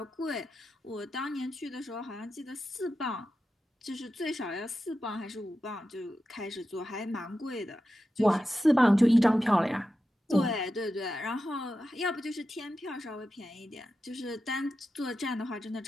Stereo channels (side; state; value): both; normal; correlation 0.91